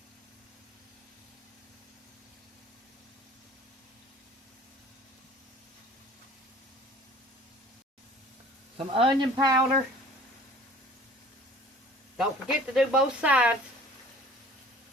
Some onion powder. Don't forget to do both sides.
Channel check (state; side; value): normal; both; correlation 0.48